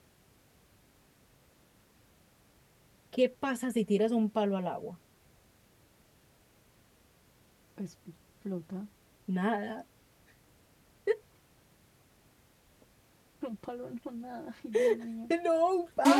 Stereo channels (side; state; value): both; identical; correlation 1.00